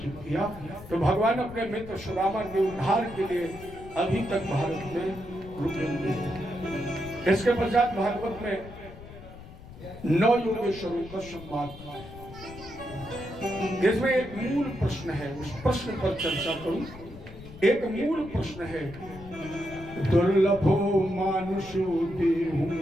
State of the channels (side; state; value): left; noise; rumble, 16 dB below the sound